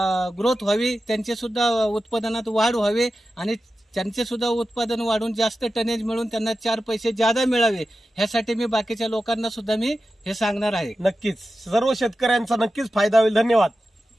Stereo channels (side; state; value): both; normal; correlation 0.93